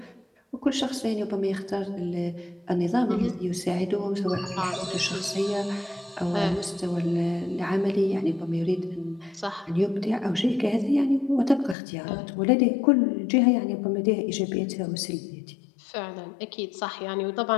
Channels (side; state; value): right; drops out; at 11.8 s